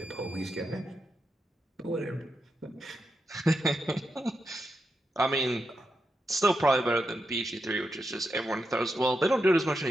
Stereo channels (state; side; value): normal; both; correlation 0.85